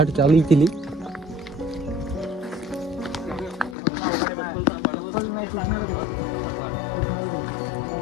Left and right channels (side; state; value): right; drops out; at 3.8 s